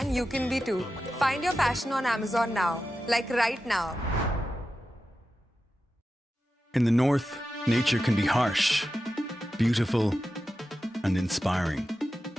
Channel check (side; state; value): both; normal; correlation 0.92